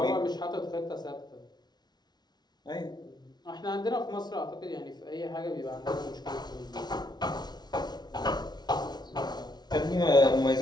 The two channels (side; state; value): right; late; 0.20 ms